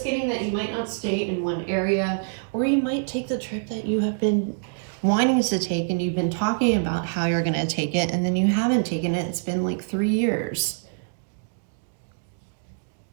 getting that you might not stay in one area, or you might take the trip that you have been wanting to take, and you've been talking about how you're going to take it, and then you haven't taken it. It's been like 3 years.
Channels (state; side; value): silent; left; digital silence